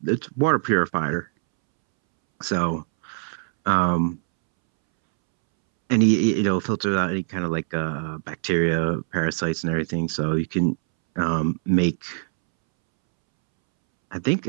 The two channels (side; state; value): left; silent; 63 dB below the other